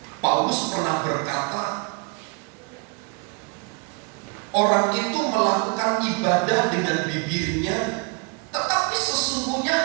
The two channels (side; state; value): left; quieter; 33.4 dB